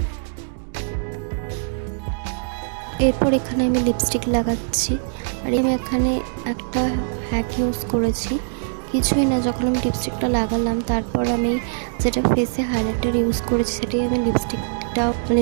এরপর এখানে আমি লিপস্টিক লাগাচ্ছি। আর আমি এখানে একটা হ্যাক ইউজ করেছি। কিছুই না, যখন আমি লিপস্টিকটা লাগালাম তারপর আমি যেটা ফেসে হাইলাইটার ইউজ করেছি সেটাই আমি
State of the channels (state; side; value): silent; left; digital silence